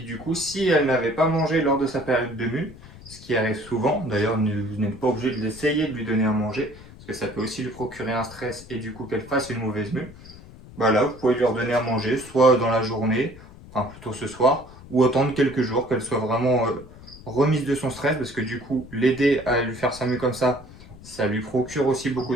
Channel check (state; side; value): noise; left; rumble, 19 dB below the sound